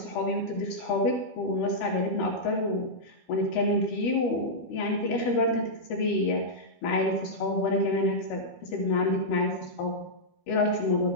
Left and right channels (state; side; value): late; right; 12 ms